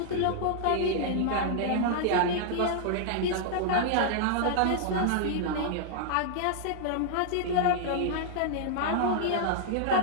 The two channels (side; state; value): both; different; correlation -0.01